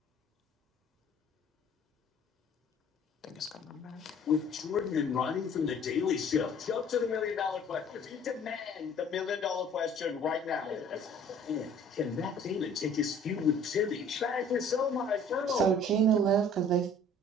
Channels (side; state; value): both; normal; correlation 0.52